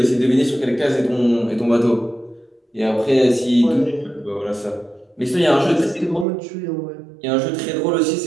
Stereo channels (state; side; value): drops out; left; at 6.2 s